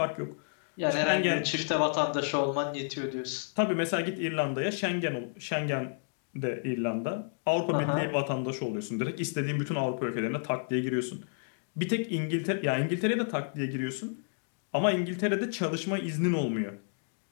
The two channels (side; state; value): right; silent; digital silence